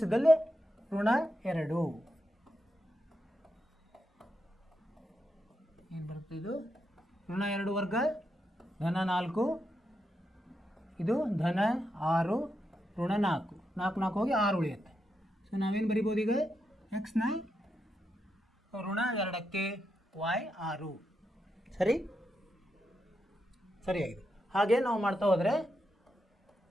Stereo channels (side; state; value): both; normal; correlation 0.84